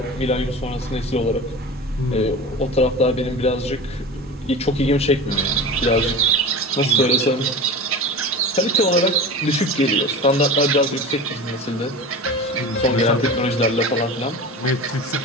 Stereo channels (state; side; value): normal; both; correlation 0.31